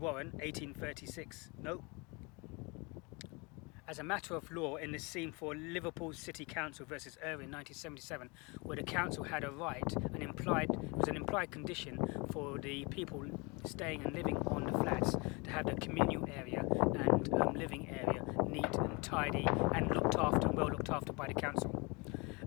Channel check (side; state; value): right; quieter; 28.6 dB